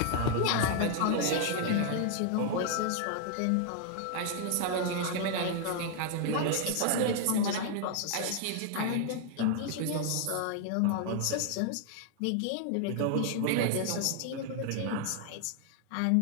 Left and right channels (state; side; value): different; both; correlation 0.00